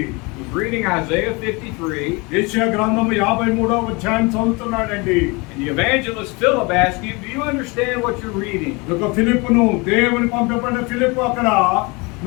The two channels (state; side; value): quieter; right; 27.3 dB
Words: He's reading Isaiah 53. యెషయా గ్రంథము 53వ అధ్యాయం చదువుతున్నాడండి. And the evangelist Philip asked him, do you understand what you're reading? ఒక ఫిలిప్పును దేవుని పంపబడిన ఫిలిప్పు అక్కడ